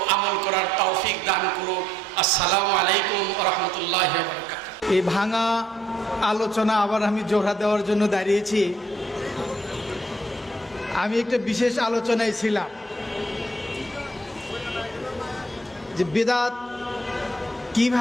আমল করার তৌফিক দান করুন। আসসালামু আলাইকুম ওয়া রাহমাতুল্লাহি ওয়া বারাকাতুহু। এই ভাঙা আলোচনা আবার আমি জোড়া দেওয়ার জন্য দাঁড়িয়েছি। আমি একটা বিশেষ আলোচনায় ছিলাম যে বিদআত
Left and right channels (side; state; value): both; normal; correlation 0.68